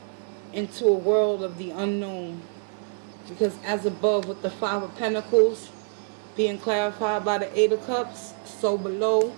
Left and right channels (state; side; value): silent; left; 61 dB below the other